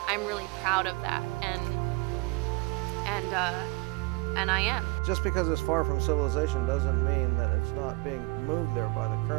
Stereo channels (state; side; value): quieter; left; 26.6 dB